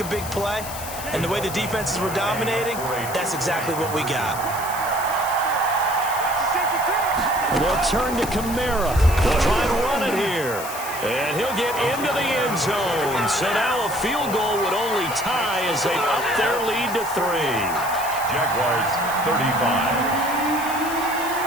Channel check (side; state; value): left; noise; hiss, 10 dB below the sound